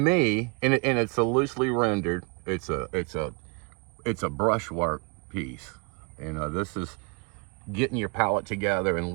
and it's a loosely rendered. It's a brushwork piece. You know, this is getting your palette together and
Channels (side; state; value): left; quieter; 31.4 dB